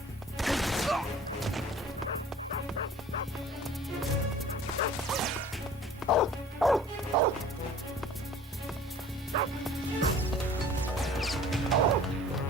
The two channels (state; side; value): normal; both; correlation 0.47